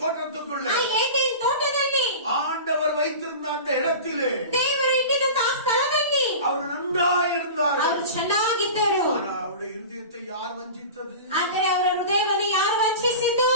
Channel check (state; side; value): inverted; both; correlation -0.33